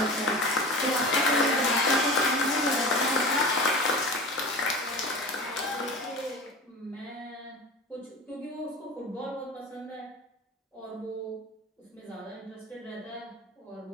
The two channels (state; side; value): normal; both; correlation 0.34